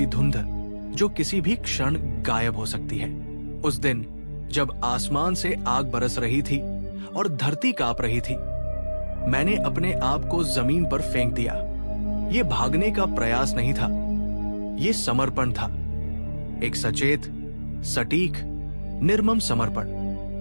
धुंध जो किसी भी क्षण गायब हो सकती है। उस दिन जब आसमान से आग बरस रही थी और धरती कांप रही थी, मैंने अपने आप को जमीन पर फेंक दिया। ये भागने का प्रयास नहीं था, ये समर्पण था, एक सचेत, सटीक, निर्मम समर्पण।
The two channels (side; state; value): both; inverted; correlation -1.00